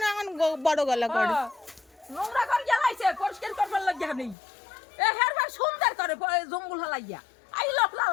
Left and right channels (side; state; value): right; drops out; at 4.4 s